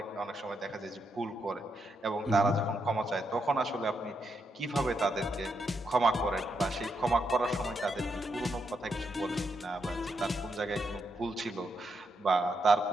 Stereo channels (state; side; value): normal; both; correlation 0.81